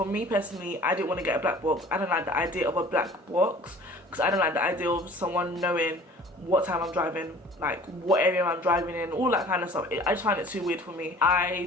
me personally, I didn't want to get a black box. I don't like the idea of a black box because I don't like the idea of someone knowing what time I'm driving, like what area I'm driving in, all that kind of stuff. I just find it too weird for me.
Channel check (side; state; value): both; normal; correlation 0.48